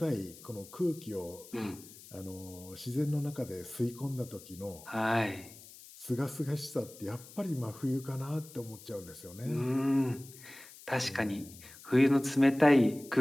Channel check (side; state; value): left; noise; hiss, 19 dB below the sound